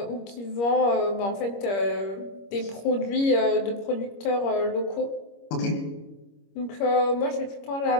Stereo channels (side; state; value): right; late; 25 ms